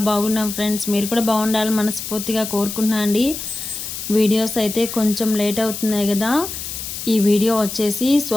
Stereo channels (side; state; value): left; noise; hiss, 7 dB below the sound